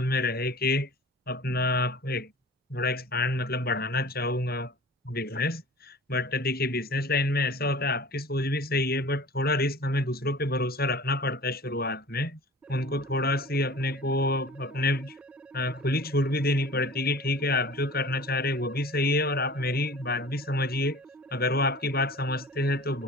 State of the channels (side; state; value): both; normal; correlation 0.42